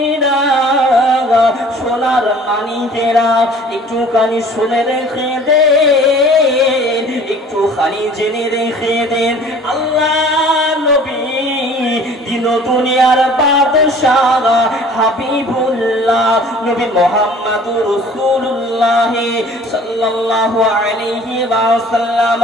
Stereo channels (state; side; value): normal; both; correlation 0.49